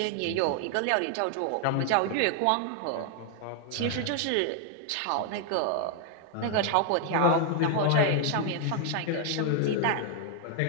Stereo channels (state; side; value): different; both; correlation 0.00